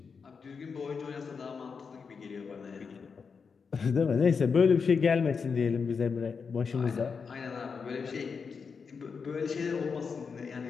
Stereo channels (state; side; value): quieter; right; 5.6 dB